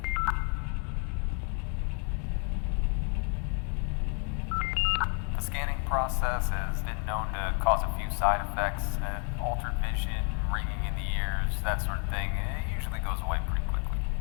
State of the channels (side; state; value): right; quieter; 38.6 dB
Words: The scanning process has been known to cause a few side effects, altered vision, ringing in the ears, that sort of thing. It usually goes away pretty quickly.